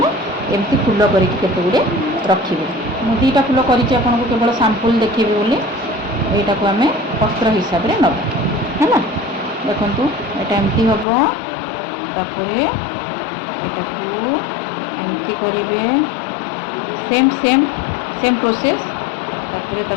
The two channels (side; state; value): right; drops out; at 11.1 s